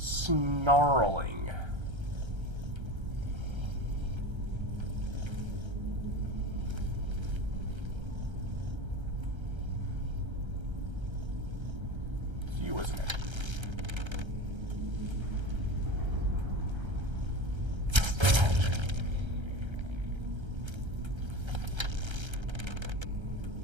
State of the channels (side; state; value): left; late; 1.3 ms